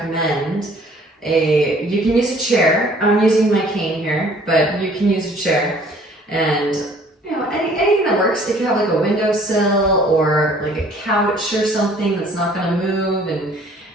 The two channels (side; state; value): both; normal; correlation 0.56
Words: you can use a chair. I'm using my cane here, but you can use a chair, and anything that works. If you have like a windowsill or like a couch or something that's not going to move and